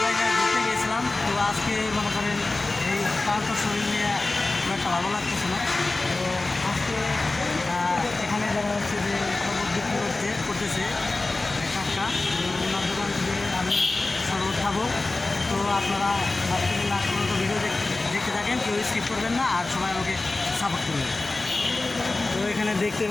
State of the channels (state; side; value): quieter; right; 3.2 dB